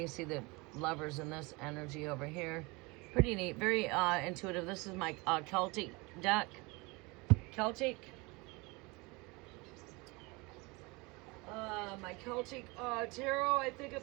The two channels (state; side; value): quieter; left; 25.8 dB